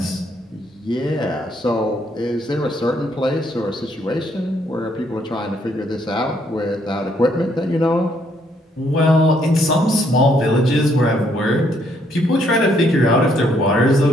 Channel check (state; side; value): normal; both; correlation 0.70